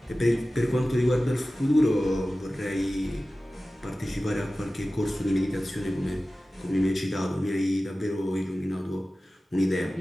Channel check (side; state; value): both; normal; correlation 0.96